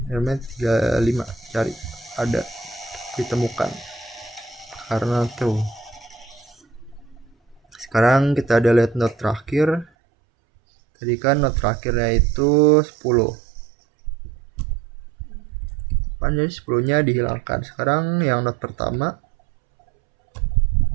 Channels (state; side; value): drops out; left; at 9.9 s